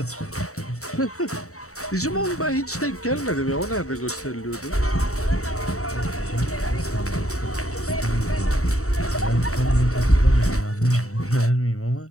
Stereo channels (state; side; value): late; right; 0.65 ms